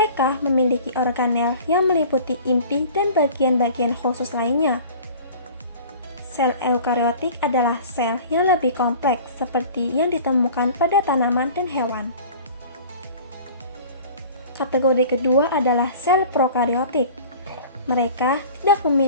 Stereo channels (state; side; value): inverted; both; correlation -0.42